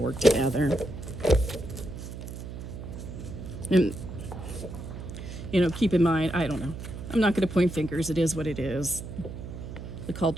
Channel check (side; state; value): right; noise; hum, 9 dB below the sound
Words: work together. And, keep in mind, I don't know. I'm not going to point fingers. It is what it is. The